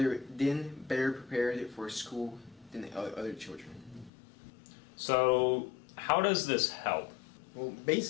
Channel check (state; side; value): drops out; right; at 4.1 s